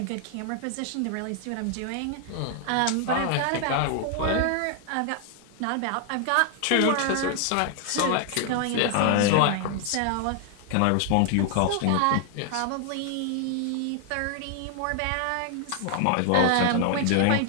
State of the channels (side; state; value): both; different; correlation 0.00